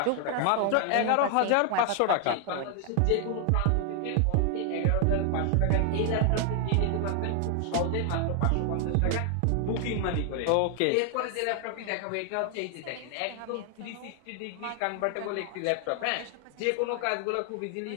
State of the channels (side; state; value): both; different; correlation 0.00